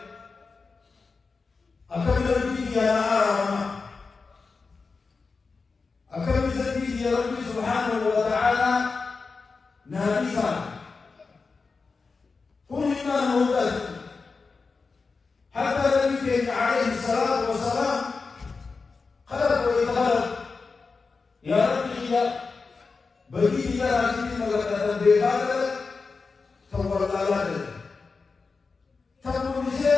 أكمل بيدي يا أرام أكمل بيدي يا ربي سبحانه وتعالى نابسا كل إيمان هدى حتى نبيك عليه الصلاة والسلام خلق ويتخلق يا ربي يا بيدي يا ربي مغفرة بيغادر تولى لك تقول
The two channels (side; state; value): right; quieter; 4.5 dB